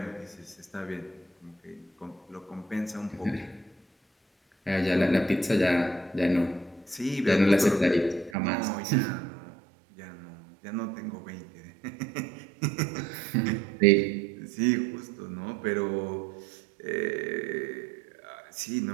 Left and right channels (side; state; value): left; drops out; at 8.3 s